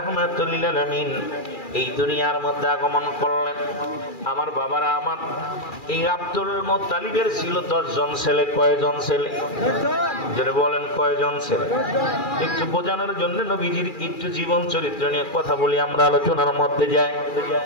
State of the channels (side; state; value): right; late; 2.4 ms